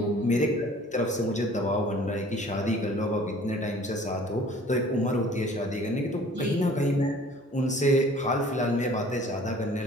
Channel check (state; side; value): normal; both; correlation 0.51